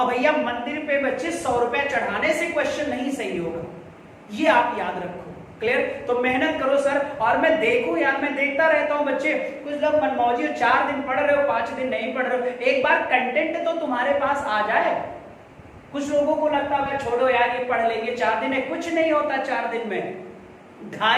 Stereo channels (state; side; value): identical; both; correlation 1.00